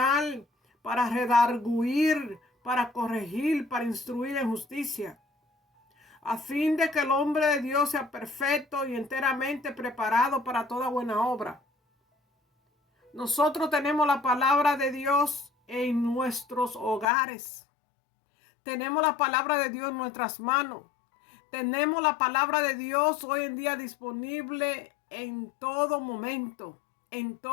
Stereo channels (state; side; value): drops out; right; at 17.1 s